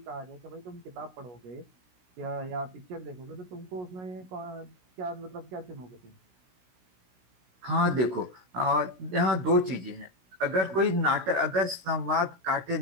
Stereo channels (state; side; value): late; left; 16 ms